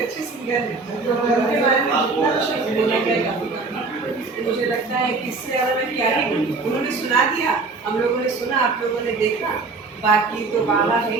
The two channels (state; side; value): quieter; left; 4.0 dB